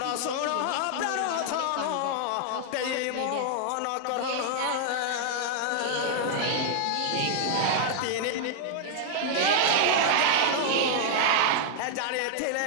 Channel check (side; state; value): both; different; correlation 0.00